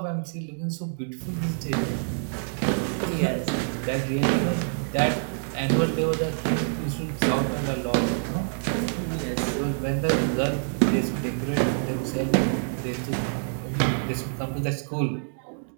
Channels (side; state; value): left; silent; digital silence